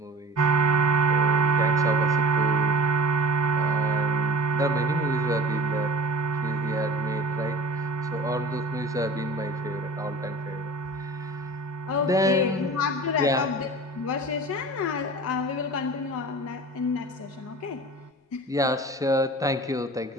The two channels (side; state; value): both; normal; correlation 0.40